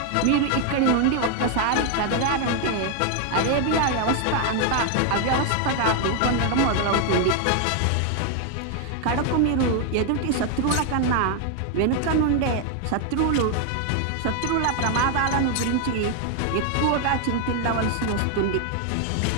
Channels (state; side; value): different; both; correlation 0.01